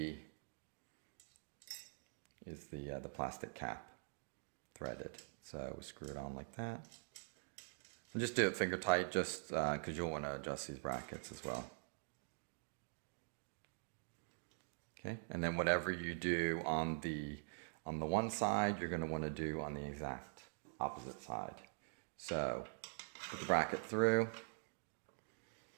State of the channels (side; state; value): left; silent; digital silence